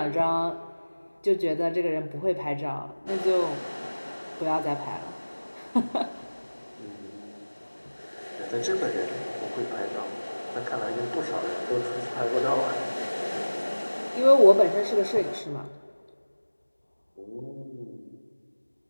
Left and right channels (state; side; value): inverted; both; correlation -1.00